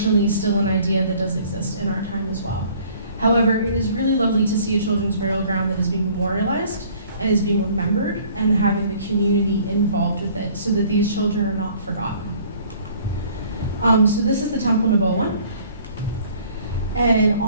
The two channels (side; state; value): both; inverted; correlation -0.55